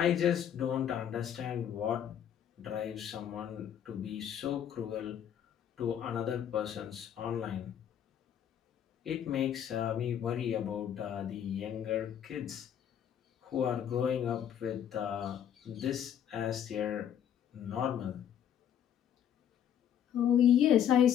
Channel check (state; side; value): quieter; right; 9.5 dB